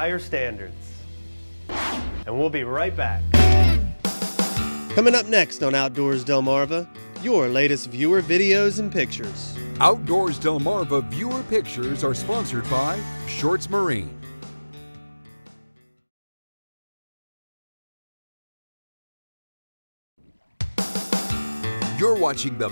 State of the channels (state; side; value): inverted; both; correlation -1.00